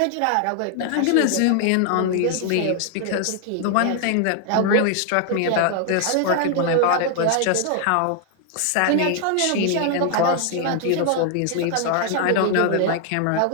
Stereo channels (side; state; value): both; different; correlation 0.00